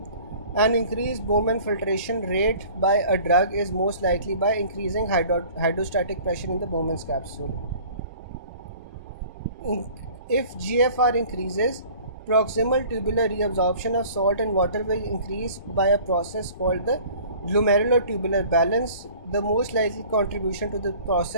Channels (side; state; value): both; inverted; correlation -0.48